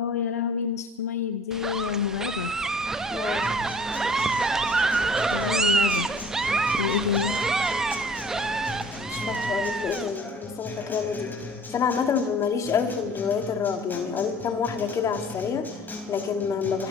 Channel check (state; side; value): normal; both; correlation 0.50